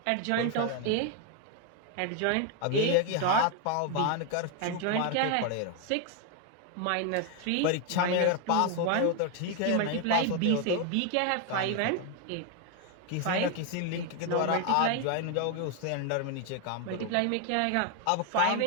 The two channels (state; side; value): different; both; correlation 0.01